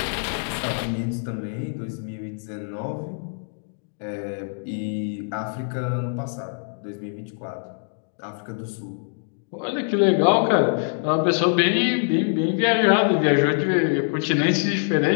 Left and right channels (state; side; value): silent; right; digital silence